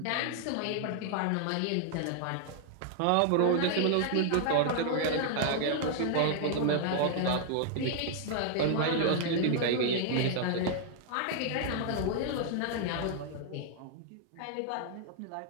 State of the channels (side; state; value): both; different; correlation -0.01